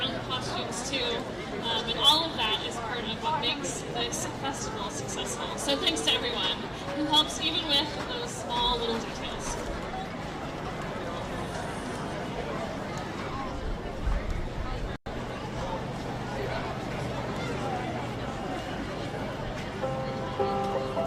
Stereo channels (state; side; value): identical; both; correlation 1.00